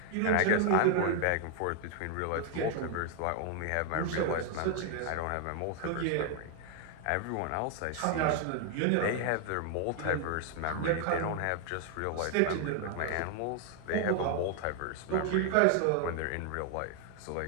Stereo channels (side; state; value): both; different; correlation 0.00